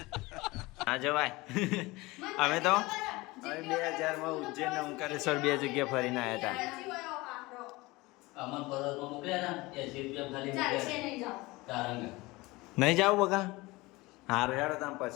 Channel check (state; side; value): quieter; right; 21.9 dB